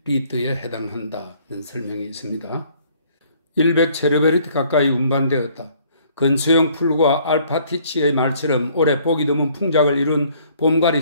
해당한다는 설명이 있습니다. 100 체르베르티 가까이 운반되었다. 근소형 풀과 알파티치의 말처럼 올해 보기 드문 풍작을 이룬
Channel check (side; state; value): both; inverted; correlation -0.60